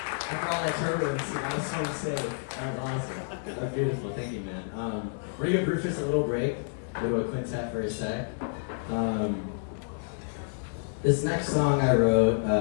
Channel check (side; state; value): right; silent; digital silence